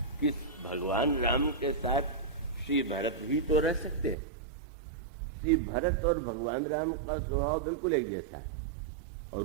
कि भगवान राम के साथ श्री भरत भी तो रह सकते हैं। श्री भरत और भगवान राम का स्वभाव बिल्कुल एक जैसा है और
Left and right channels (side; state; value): left; drops out; at 4.2 s